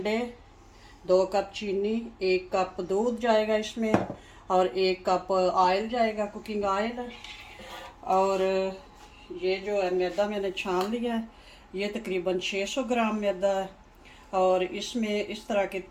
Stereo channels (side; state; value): both; identical; correlation 1.00